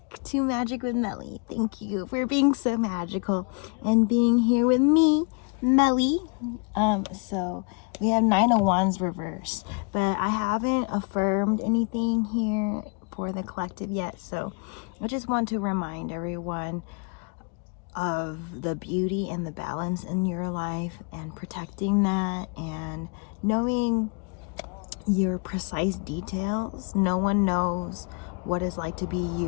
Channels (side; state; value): right; quieter; 34.3 dB